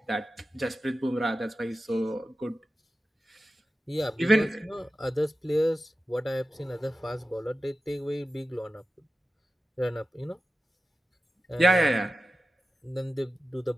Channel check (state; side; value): normal; both; correlation 0.94